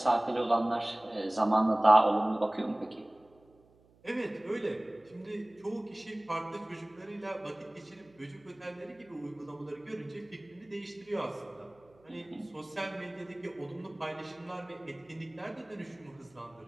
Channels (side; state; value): right; noise; hum, 30 dB below the sound